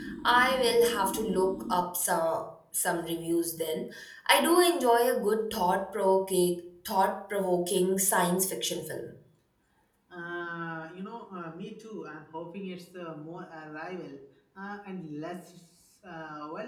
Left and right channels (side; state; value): both; identical; correlation 1.00